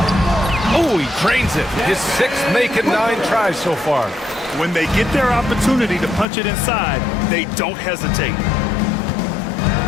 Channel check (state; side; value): drops out; right; at 6.2 s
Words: Oh, he drains it. His 6th making 9 tries so far. When they get their opportunity to punch it inside, they don't hesitate.